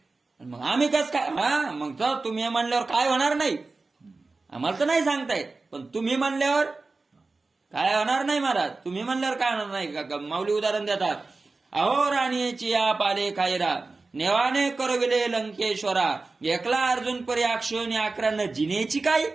मग आम्ही कस काय? मग तर तुम्ही म्हणल्यावर काय होणार नाही. आम्हाला तर नाही सांगता येत, पण तुम्ही म्हणल्यावर काय होणार नाही महाराज. तुम्ही म्हणल्यावर काय होणार नाही का? माऊली उदाहरण देतात. अहो राणीची या पाले खायरा नेवाने करविले लंकेश्वरा. एकला अर्जुन परी अक्षोनी अकरानं जिनेची काय.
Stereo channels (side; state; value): left; quieter; 3.7 dB